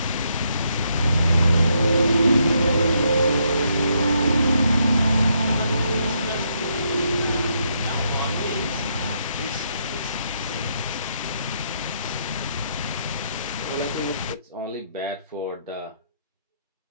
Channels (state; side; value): inverted; both; correlation -0.76